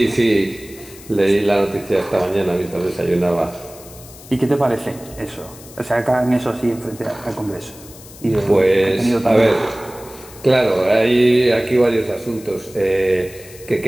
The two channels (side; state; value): left; noise; hiss, 19 dB below the sound